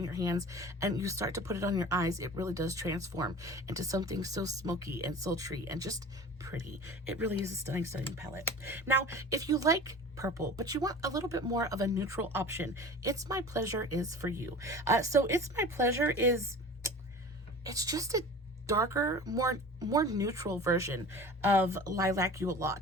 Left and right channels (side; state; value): both; normal; correlation 0.39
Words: your hands and you start to put it on your eyes, it really does transform into something so smoky and sultry and just pretty. It really is a stunning, stunning palette. Now, if you like purple, but you want a little bit more of a neutral option, It's My Pleasure is for you. So It's My Pleasure is, it's just a darker, more neutral version of Lilac You a